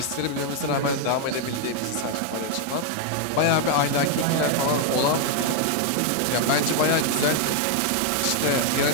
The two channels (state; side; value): different; both; correlation 0.01